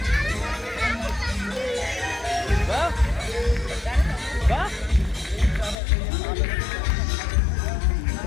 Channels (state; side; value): drops out; right; at 5.8 s